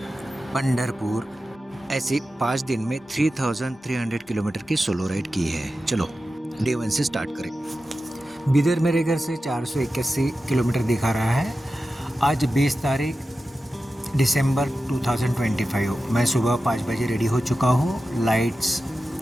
पंढरपुर। ऐसे 5 दिन में 3300 किलोमीटर की सोलो राइड की है। चलो डे 1 से स्टार्ट करें। बिदर मेरे घर से 481 किलोमीटर दिखा रहा है। आज 20 तारीख दिसंबर 2025। मैं सुबह 5 बजे रेडी हो चुका हूँ। लाइट्स,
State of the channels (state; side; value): normal; both; correlation 0.93